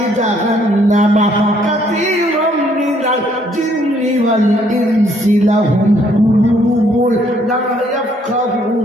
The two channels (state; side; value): normal; both; correlation 0.66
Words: জাহান্নামা কাসীরাম মিনাল জিন্নি ওয়াল ইনসি লাহুম কুলুবুন লা